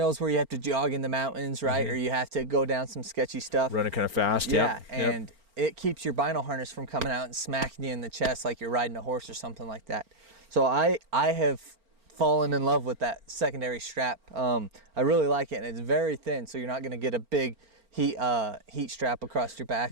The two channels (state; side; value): late; left; 4.4 ms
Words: where you have to jog in the mountains, right? Or you have to go down some sketchy stuff. Running kind of fast. Yeah, and it keeps your Bino harness from coming out and smacking you in the chest like you're riding a horse or something like that. So I have fallen in love with that secondary strap. I really like it, and it's very thin, so you're not going to get a big heat strap across your